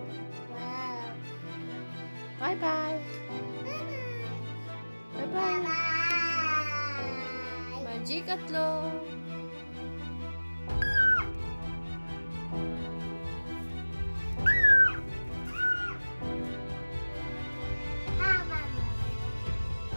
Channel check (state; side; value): inverted; both; correlation -1.00